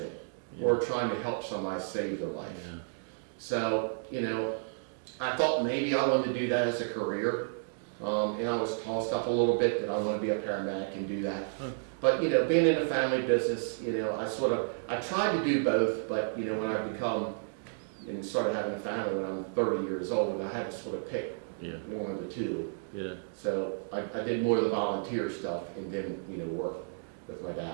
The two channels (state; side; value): silent; left; digital silence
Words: or trying to help somebody save their life. So, I thought maybe I wanted to do that as a career, and I was tossed up a little bit that I want to be a paramedic and do that. But being in a family business, I tried to do both, but when I become and started having a family when I'm 30 years old, I had to sort of pick one of the two. Yeah. So I did more of the volunteer stuff, and then work with my